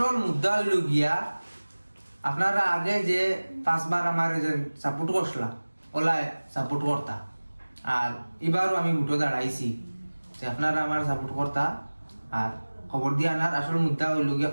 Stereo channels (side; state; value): both; inverted; correlation -1.00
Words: মুদ্রা হইল গিয়া আপনারা আগে যে 5 বার আমার সাপোর্ট করছিলাম ওলাই সাপোর্ট করতা আর এবারও আমি উঠো দাঁড়াইছি যে আপনারা আমার সাপোর্ট করতা আর খবর দিয়া আনার আসল মুদ্রা হইল গিয়া